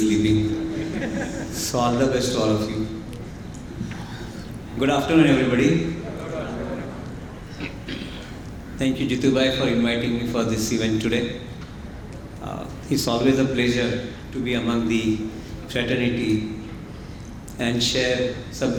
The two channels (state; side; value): identical; both; correlation 1.00